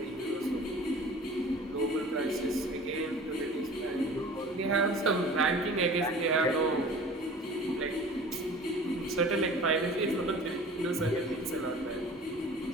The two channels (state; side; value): normal; both; correlation 0.43